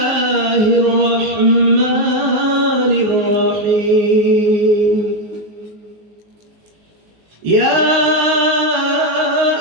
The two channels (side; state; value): left; late; 19 ms